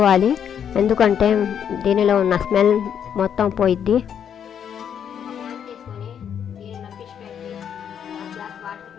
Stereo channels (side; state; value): right; quieter; 8.5 dB